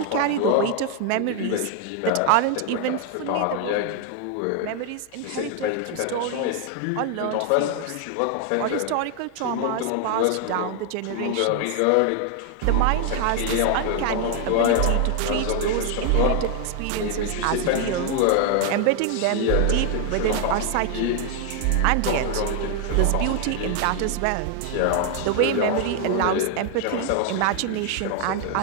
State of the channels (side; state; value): both; different; correlation 0.00